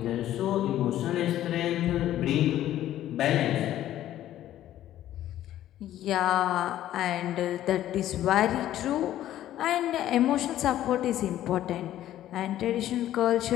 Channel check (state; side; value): quieter; right; 12.8 dB